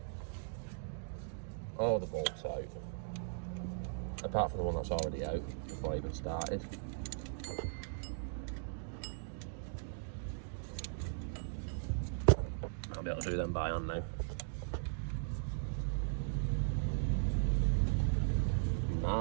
all the bolts out, apart from the one that's already out before I even started. I'll be able to do them by hand now.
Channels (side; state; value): left; silent; digital silence